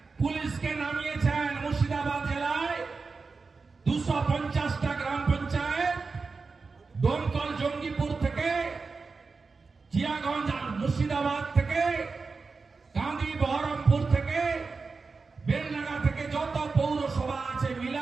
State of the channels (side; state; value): left; quieter; 4.4 dB